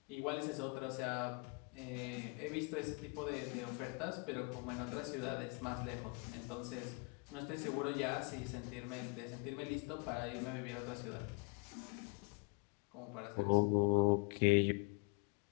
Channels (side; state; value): right; quieter; 32.6 dB